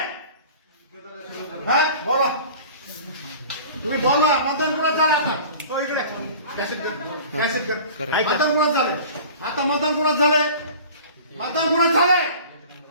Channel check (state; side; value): inverted; both; correlation -0.42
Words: हा बोला तुम्ही बोला मतदान कुणाचं झालं आता हो इकडे कॅसेट कर मतदान कुणाचं झालंय आता मतदान कुणाचं झालंय मतदान कुणाचं झालंय